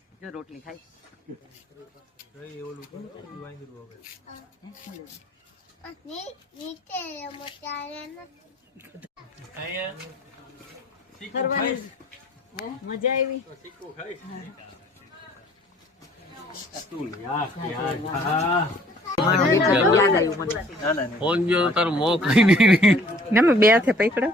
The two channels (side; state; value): both; normal; correlation 0.57